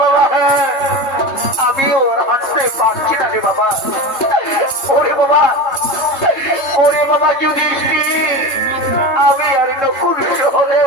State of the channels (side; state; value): right; late; 3.3 ms